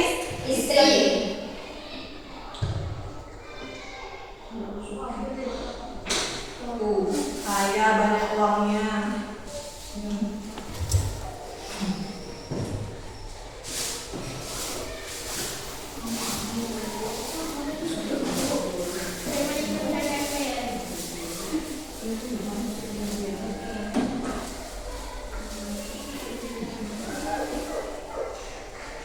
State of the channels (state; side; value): identical; both; correlation 1.00